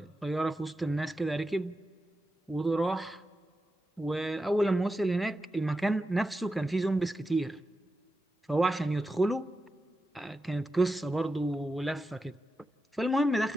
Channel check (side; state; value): both; normal; correlation 0.91